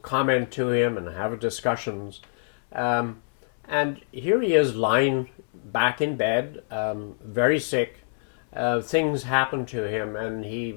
comment to him and have discussions. And here he is lying back in bed, very sick. Things happen to him, and he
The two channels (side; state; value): right; silent; 61 dB below the other